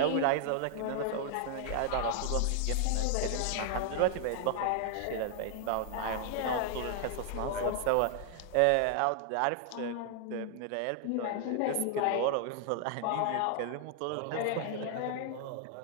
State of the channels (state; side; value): different; both; correlation 0.00